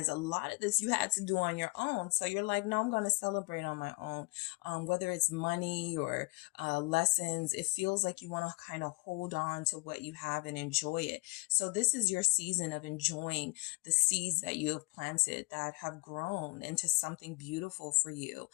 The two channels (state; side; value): quieter; right; 28.8 dB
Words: a lot of this you had to do on your own. So you're like, no, I'm going to celebrate on my own. Whether it's money or lessons, it feels like you want to kind of hold on to what you have and enjoy it. So this is your season of enjoying the seeds that you have planted that have grown into something beautiful for you.